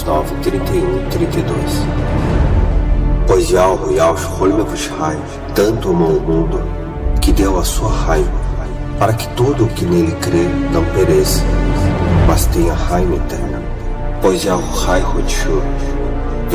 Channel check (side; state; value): both; identical; correlation 1.00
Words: 9:31-32. Pois Yahweh Yahushua Mehushai tanto amou o mundo que deu a sua raiva, para que todo o que nele crê não pereça, mas tenha raiva eterna. Pois Yahushai